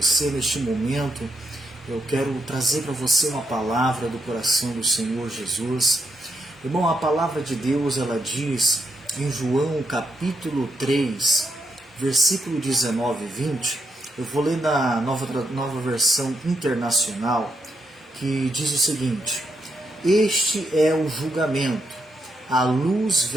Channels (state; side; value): normal; both; correlation 0.80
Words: neste momento. Eu quero trazer para você uma palavra do coração do Senhor Jesus. Irmão, a palavra de Deus, ela diz em João capítulo 3, versículo 19 e 20. Eu vou ler na nova versão internacional, que diz o seguinte: Este é o julgamento. A luz